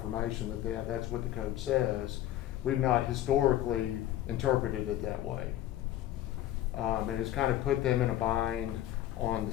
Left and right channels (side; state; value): right; quieter; 13.2 dB